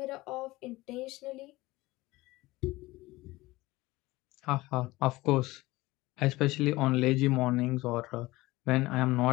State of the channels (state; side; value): quieter; right; 19.7 dB